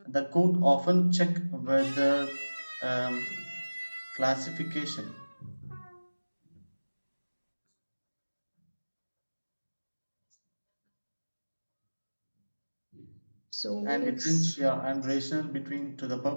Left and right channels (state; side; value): inverted; both; correlation -1.00